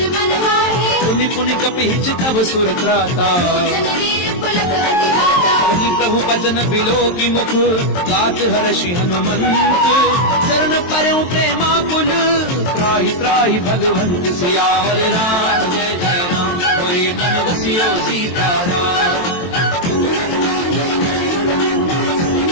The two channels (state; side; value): late; right; 23 ms